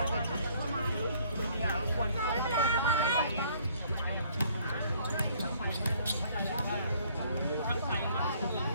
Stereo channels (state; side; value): inverted; both; correlation -0.61